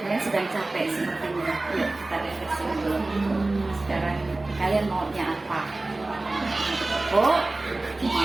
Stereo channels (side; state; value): left; quieter; 3.0 dB